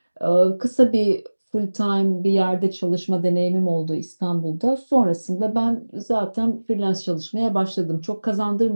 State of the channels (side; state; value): both; inverted; correlation -1.00